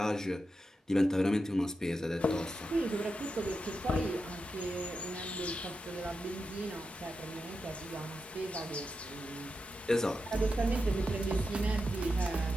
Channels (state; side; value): normal; both; correlation 0.88